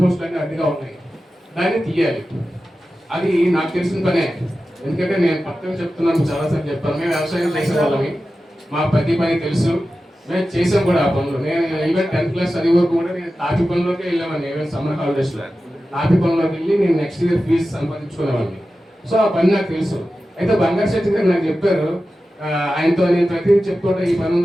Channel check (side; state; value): both; normal; correlation 0.93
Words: అడ్డుగా ఉన్నాయి, దాన్ని తీయాలి. అది నాకు తెలిసిన పనే, ఎందుకంటే నేను పక్కన చెప్తున్నాను, చాలాసార్లు చెప్పాను. మేము వ్యవసాయం చేసే వాళ్ళమి, మా ప్రతి పని తెలుసు, మేము చేసాం కూడా ఆ పనులు. నేను ఈవెన్ 10th class చదివే వరకు కూడా నేను తాపి పనుల్లోకి వెళ్ళామని, ఈవెన్ సమ్మర్ హాలిడేస్లో తాపి పనుల్లోకి వెళ్ళి నేను నెక్స్ట్ ఇయర్ ఫీజు సంపాదించుకునేవాడిని. సో ఆ పని నాకు తెలుసు. అయితే బంగారు శెట్టి గారు నాకు చెప్పారు, ఆయనతో నేను ప్రతి చెప్పుకుంటే ఈ పని